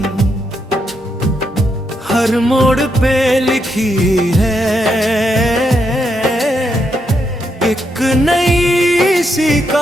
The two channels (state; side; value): normal; both; correlation 0.80